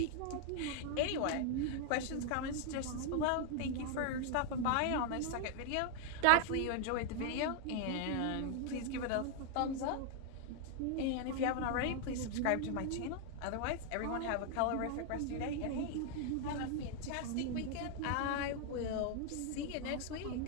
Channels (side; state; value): both; different; correlation 0.00